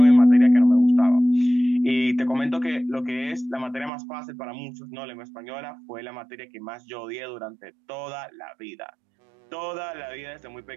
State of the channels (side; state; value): left; drops out; at 3.9 s